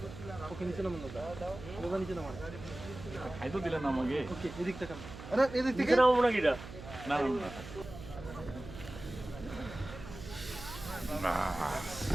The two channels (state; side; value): noise; right; hum, 13 dB below the sound